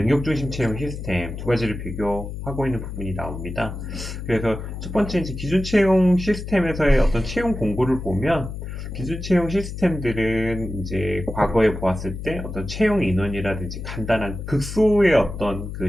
중심 채용 시스템 두 가지를 비교하고 있는 부분이 나옵니다. 그래서 첫 번째 이제 기존 채용 시스템에서의 어떤 채용 공고를 보면 기술 채용 시스템들은 이제 과거에 보았을 때 어떤 채용 인원이라든지 간단한 극소의 어떤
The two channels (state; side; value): noise; left; hum, 8 dB below the sound